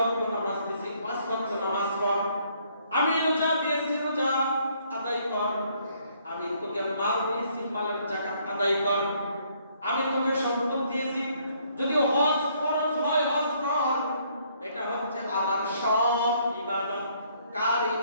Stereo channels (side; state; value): both; inverted; correlation -0.66